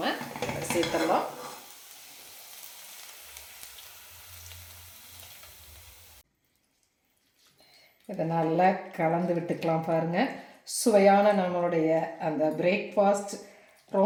சேர்த்துடலாம். இதை நல்லா கலந்து விட்டுக்கலாம் பாருங்கள். சுவையான நம்மளுடைய அந்த பிரேக்ஃபாஸ்ட்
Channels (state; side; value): identical; both; correlation 1.00